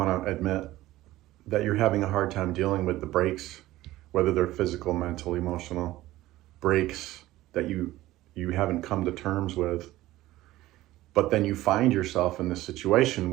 to admit, that you're having a hard time dealing with the breaks, whether they're physical, mental, emotional breaks that you haven't come to terms with. But then you find yourself in this situation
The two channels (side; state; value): left; quieter; 16.4 dB